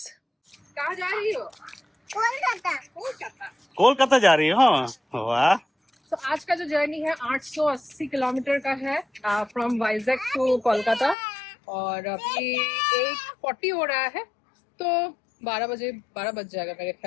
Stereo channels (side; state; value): right; drops out; at 11.2 s